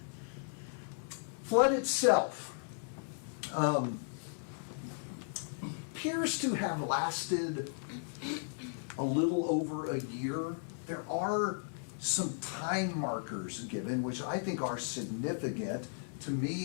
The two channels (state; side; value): silent; right; digital silence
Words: Flood itself appears to have lasted a little over a year. There are some time markers given, which I think are significant. To